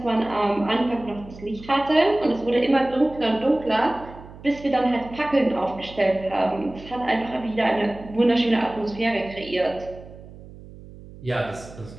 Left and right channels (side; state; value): right; noise; hum, 18 dB below the sound